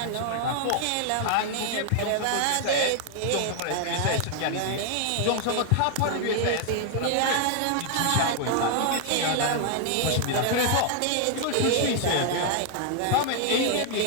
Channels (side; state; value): both; different; correlation 0.00